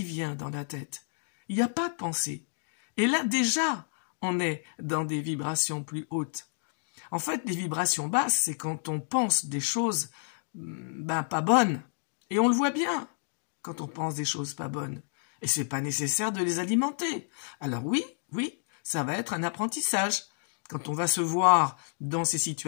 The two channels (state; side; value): silent; right; 58 dB below the other